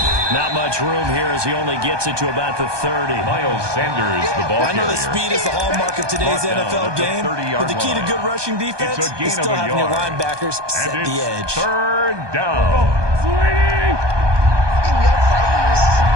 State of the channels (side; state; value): left; late; 1.2 ms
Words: Not much room here as he only gets it to about the 30. Miles Sanders, the ball carrier. I know the speed is the hallmark of today's NFL game, but the key to good rushing defense is still having your linebackers set the edge. 3rd down.